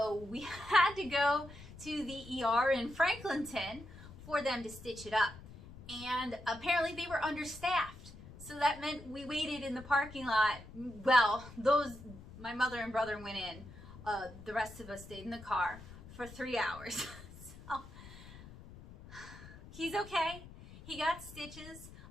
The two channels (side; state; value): left; noise; rumble, 16 dB below the sound